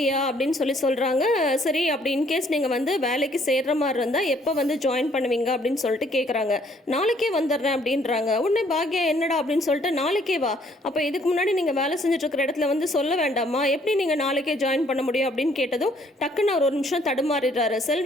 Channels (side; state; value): both; normal; correlation 0.64